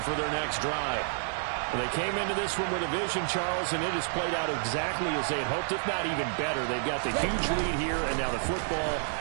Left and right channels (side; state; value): left; silent; 58 dB below the other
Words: for their next drive. They came into this one with a vision, Charles, and it has played out exactly as they had hoped, if not even better. They've got the huge lead here, and now the football